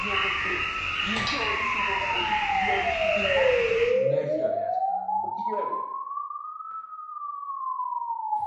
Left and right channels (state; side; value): identical; both; correlation 1.00